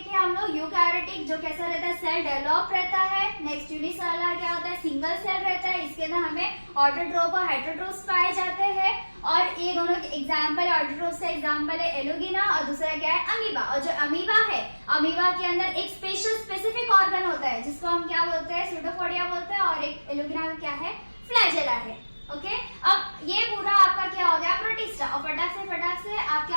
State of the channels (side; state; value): both; inverted; correlation -1.00